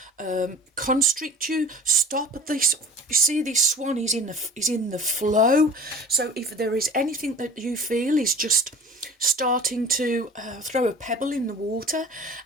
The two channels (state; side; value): normal; both; correlation 0.42